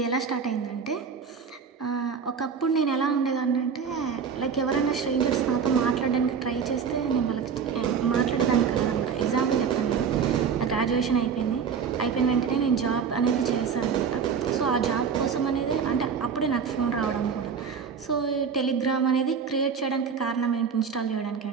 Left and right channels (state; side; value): quieter; left; 6.4 dB